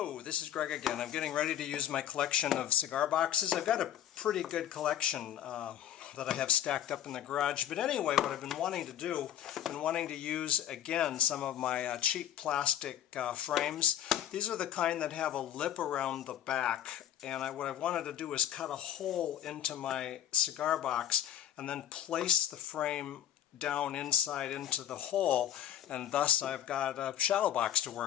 this is Greg again. I'm getting ready to use my collection of cigar boxes. I've got a pretty good collection that I have stacked up in the garage. But anyway, what I've been wanting to do, I've been wanting to use again some of my cheap plastic frames. These are the kind that have a lip around the back. And what I wanted to do is cut a hole into my cigar box and then place the frame down inside into the hole, and thus I've got a shadow box to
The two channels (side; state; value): right; quieter; 11.3 dB